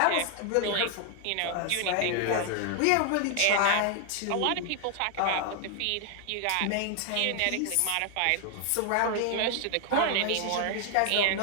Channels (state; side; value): different; both; correlation 0.00